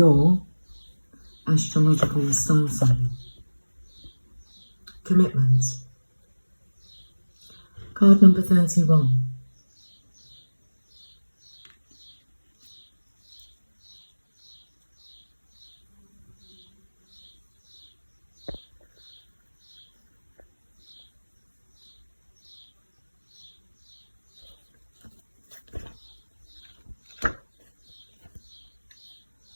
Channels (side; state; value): both; inverted; correlation -1.00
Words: astrological star sign. Commitment. Card number 31.